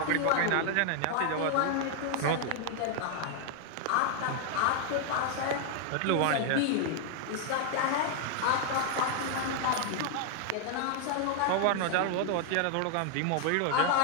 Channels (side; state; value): both; different; correlation 0.00